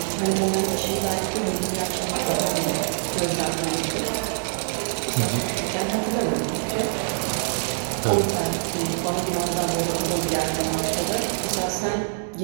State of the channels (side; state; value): left; silent; 62 dB below the other